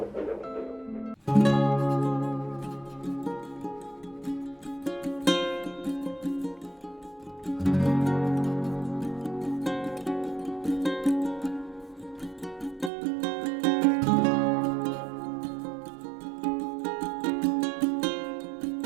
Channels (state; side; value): drops out; left; at 12.9 s